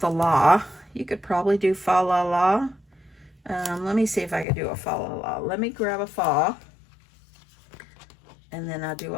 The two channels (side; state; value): right; drops out; at 4.5 s